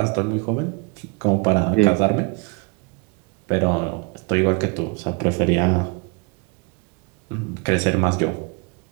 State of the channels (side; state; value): left; quieter; 29.6 dB